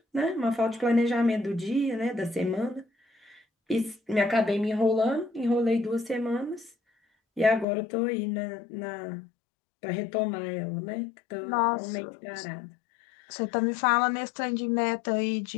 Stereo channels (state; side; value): drops out; right; at 7.7 s